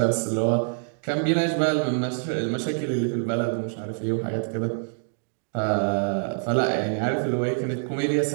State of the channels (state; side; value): silent; left; digital silence